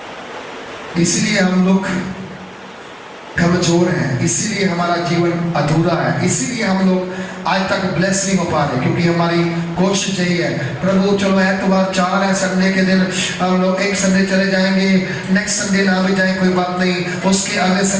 इसलिए हम लोग कमजोर हैं, इसीलिए हमारा जीवन अधूरा है, इसीलिए हम लोग आज तक ब्लेस नहीं हो पा रहे, क्योंकि हमारी कोशिश यही है प्रभु चलो एतवार 4 है, संडे के दिन हम लोग एक संडे चले जाएंगे, नेक्स्ट संडे ना भी जाए कोई बात नहीं, उसके अगले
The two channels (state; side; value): identical; both; correlation 1.00